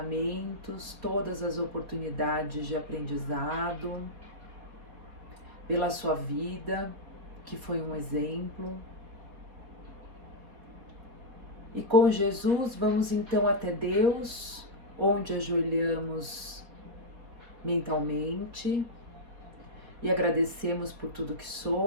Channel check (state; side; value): late; left; 4.2 ms